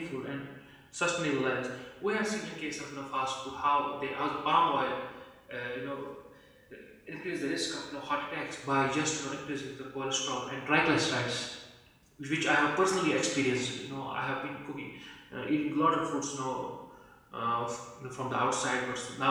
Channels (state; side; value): identical; both; correlation 1.00